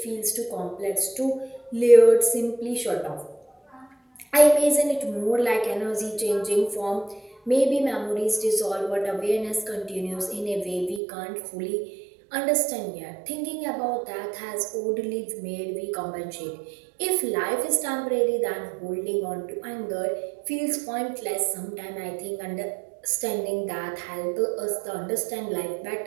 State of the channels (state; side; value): drops out; left; at 11.0 s